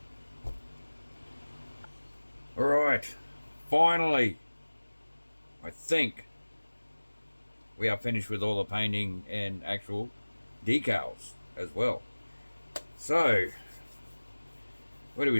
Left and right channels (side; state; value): both; inverted; correlation -1.00